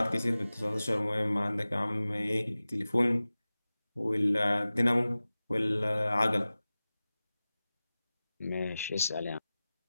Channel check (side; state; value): both; inverted; correlation -0.97